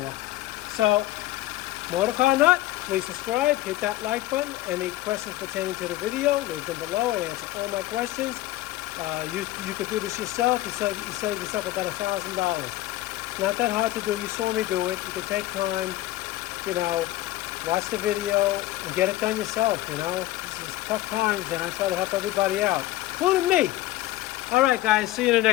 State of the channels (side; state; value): right; quieter; 16.4 dB